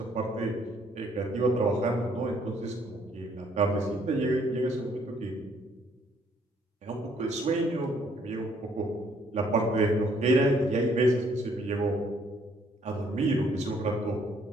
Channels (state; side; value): normal; both; correlation 0.66